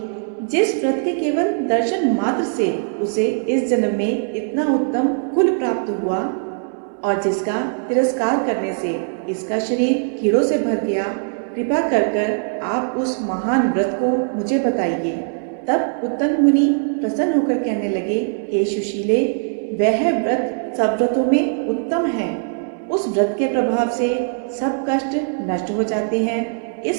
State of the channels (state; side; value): silent; left; 62 dB below the other